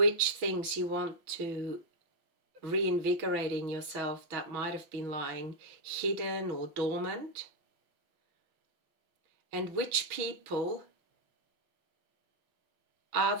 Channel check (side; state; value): left; late; 6.2 ms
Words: things you want to reinvigorate in yourself that might have been lying hidden or dormant, and which people are